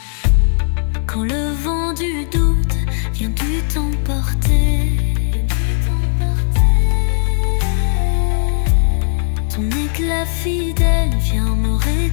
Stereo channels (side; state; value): right; silent; digital silence